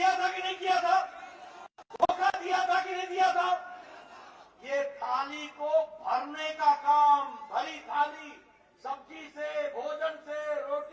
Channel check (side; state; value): both; identical; correlation 1.00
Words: था कि नहीं किया था? धोखा दिया था कि नहीं दिया था? ये थाली को भरने का काम, भरी थाली सब्जी से, भोजन से,